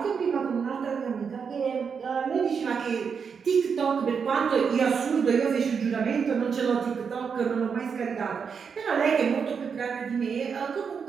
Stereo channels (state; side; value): quieter; left; 6.3 dB